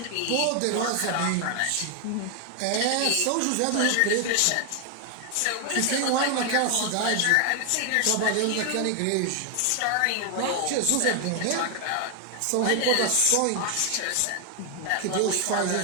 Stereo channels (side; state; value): both; different; correlation 0.00